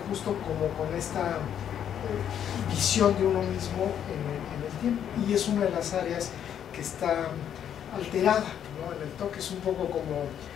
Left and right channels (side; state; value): right; quieter; 9.3 dB